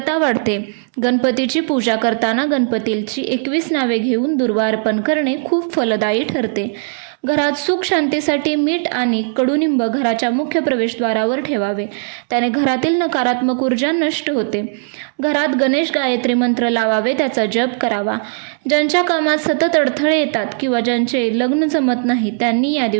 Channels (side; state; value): left; silent; 68 dB below the other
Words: वाढते. गणपतीची पूजा करताना गणपतीची 21 नावे घेऊन दुर्वा अर्पण करणे खूप फलदायी ठरते. घरात सुख शांतीसाठी मीठ आणि कडुनिंब घराच्या मुख्य प्रवेशद्वारावर ठेवावे, त्याने घरातील नकारात्मक ऊर्जा नष्ट होते. घरात गणेश गायत्री मंत्र लावावे, त्याचा जप करावा. ज्यांच्या कामात सतत अडथळे येतात किंवा ज्यांचे लग्न जमत नाही, त्यांनी या